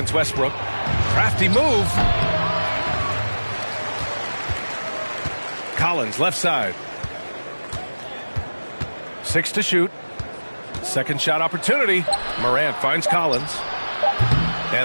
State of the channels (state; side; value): inverted; both; correlation -1.00